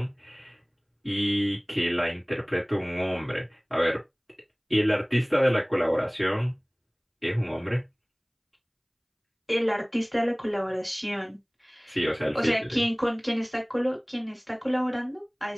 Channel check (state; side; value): identical; both; correlation 1.00